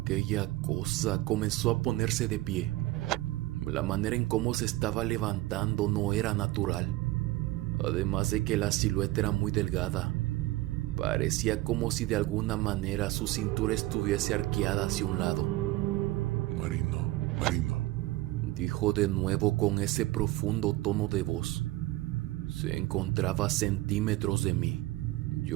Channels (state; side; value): quieter; left; 18.1 dB